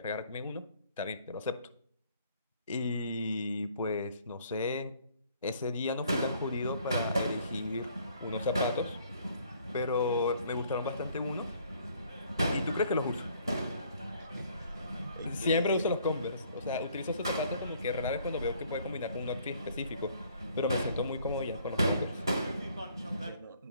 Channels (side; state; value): both; inverted; correlation -0.61